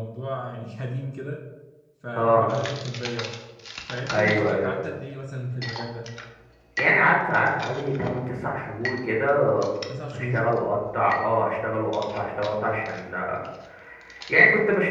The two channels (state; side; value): identical; both; correlation 1.00